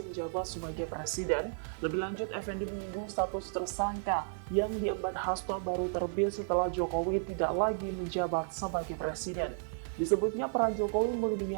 menjabat sebagai presiden. Lebih lanjut, Effendi menyinggung status tersangka yang diemban Hasto baru terbit setelah Jokowi tidak lagi menjabat sebagai presiden. Disebutnya peran Jokowi melindungi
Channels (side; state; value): left; silent; digital silence